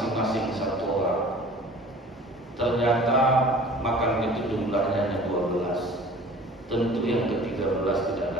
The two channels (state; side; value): normal; both; correlation 0.46